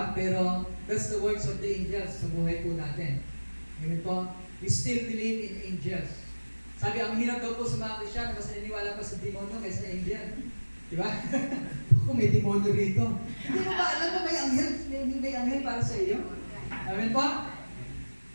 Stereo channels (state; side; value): inverted; both; correlation -1.00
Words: Pero that's the works of the angels sa buhay po natin. Amen po? We still believe in angels. Sabi, ang hirap daw po sa mga Kristiyan, mas naniniwala pa sa demonyo kaysa angel. Diba? Kung may demonyo rito. Hindi mo ba alam na may anghel para sa iyo? Amen po?